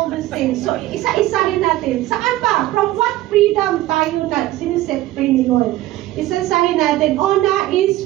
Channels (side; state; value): left; quieter; 15.8 dB